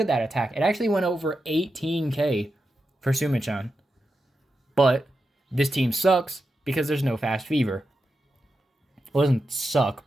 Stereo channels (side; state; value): both; normal; correlation 0.89